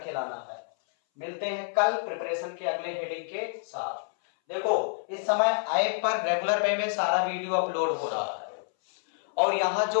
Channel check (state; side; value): silent; right; 59 dB below the other